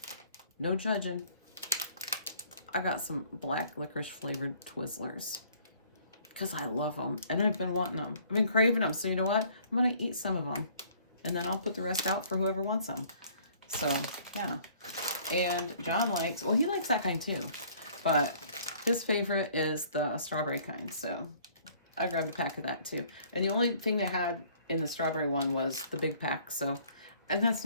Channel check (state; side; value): inverted; both; correlation -0.57